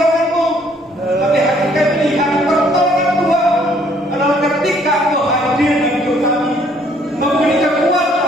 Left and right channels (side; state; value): both; normal; correlation 0.63